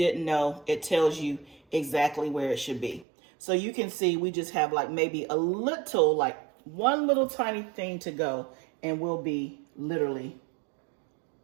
know, it tells you exactly where it should be. So you can see we just have like maybe a little, like one little tiny thing to go, and we'll be literally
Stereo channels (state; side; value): drops out; left; at 3.1 s